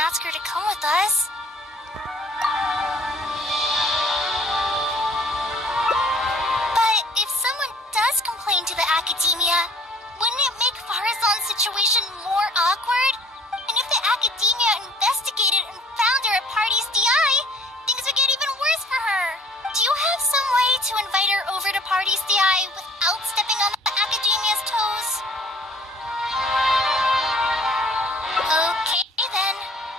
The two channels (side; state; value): both; normal; correlation 0.55